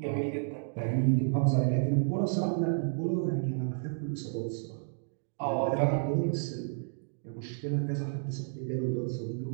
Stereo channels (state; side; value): silent; left; digital silence